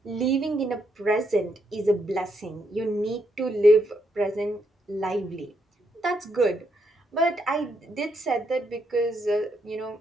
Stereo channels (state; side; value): normal; both; correlation 0.77